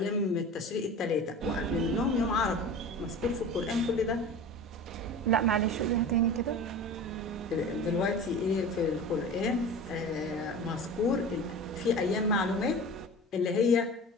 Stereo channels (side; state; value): both; normal; correlation 0.35